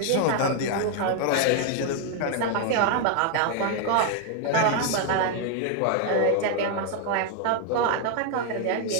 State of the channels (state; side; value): different; both; correlation 0.00